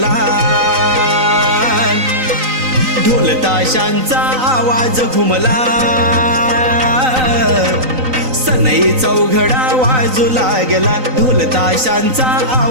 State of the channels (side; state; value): left; late; 3.9 ms